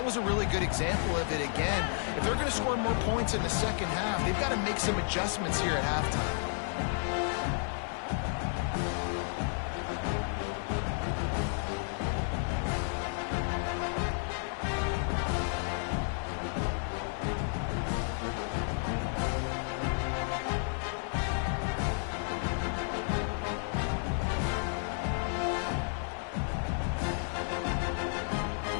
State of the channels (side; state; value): right; silent; 56 dB below the other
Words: was a really good example of it again. If they're going to score more points in the second half, they've got to make some adjustments here at halftime.